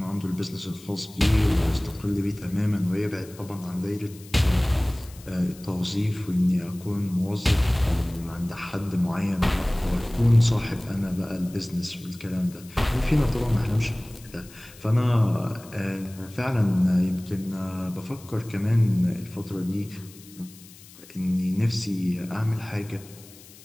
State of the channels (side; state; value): left; noise; hiss, 21 dB below the sound